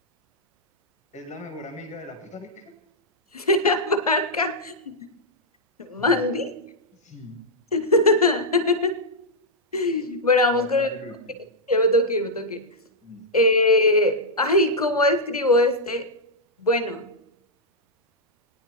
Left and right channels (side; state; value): both; normal; correlation -0.05